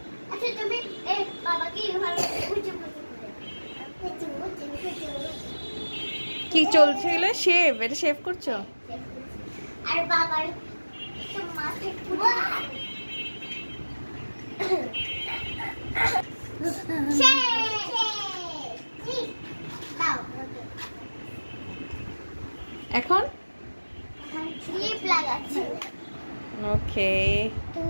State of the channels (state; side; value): inverted; both; correlation -1.00